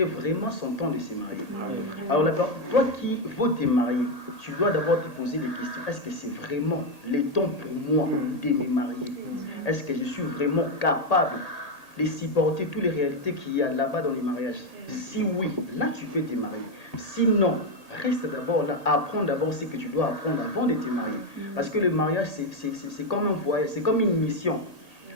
vraiment son temps de se marier. Alors toi qui veux te marier, tu dois d'abord te poser des questions. Est-ce que c'est vraiment le temps pour moi de me marier? Est-ce que je suis vraiment capable de supporter toutes les réalités qu'il y a là-bas dans les mariages? Si oui, là tu peux te marier. Sinon, reste d'abord là, apprends d'abord ce que tu dois apprendre avant de te marier. Parce que le mariage, c'est comme un voyage, c'est comme une mission.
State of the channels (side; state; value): right; late; 1.8 ms